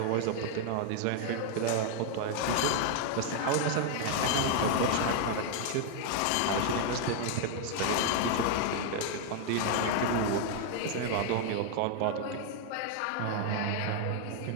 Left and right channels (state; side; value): different; both; correlation 0.00